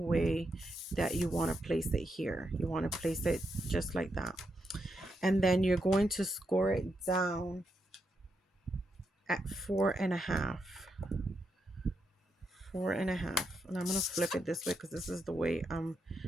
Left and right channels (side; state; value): both; normal; correlation 0.82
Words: that you want to place it here. You want to place it just like that. And then you're going to score it down at 4.5. 4.5. And I'm going to flip it this way because this is the way I